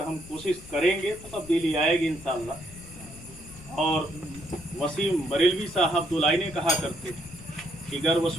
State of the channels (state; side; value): noise; left; rumble, 18 dB below the sound